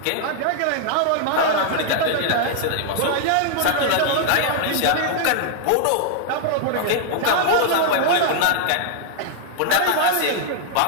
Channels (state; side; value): different; both; correlation -0.01